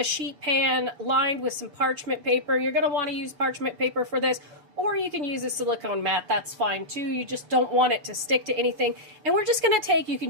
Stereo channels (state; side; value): late; left; 7.0 ms